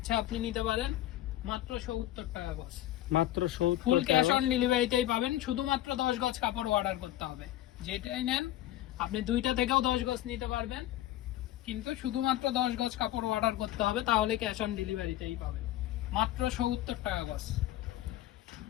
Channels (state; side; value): quieter; right; 14.1 dB